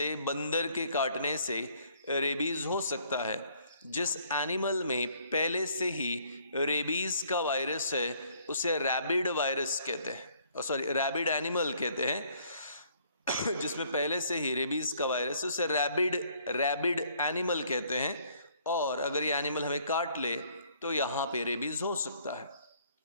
बंदर के काटने से रेबीज़ हो सकता है। जिस एनिमल में पहले से ही रेबीज़ का वायरस है उसे रैबिड वायरस कहते हैं, रैबिड एनिमल कहते हैं। जिसमें पहले से ही रेबीज़ का वायरस है उसे रैबिड एनिमल कहते हैं, और अगर ये एनिमल हमें काट ले तो यहाँ पे रेबीज़ हो सकता है।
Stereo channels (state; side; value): inverted; both; correlation -0.63